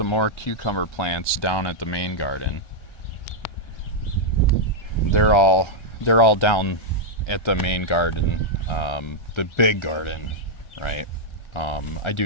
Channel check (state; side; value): late; right; 1.4 ms